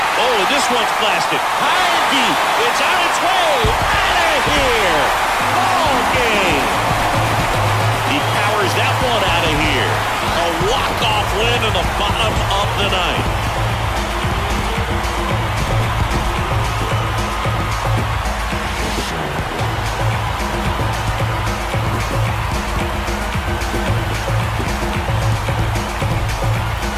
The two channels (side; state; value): both; identical; correlation 1.00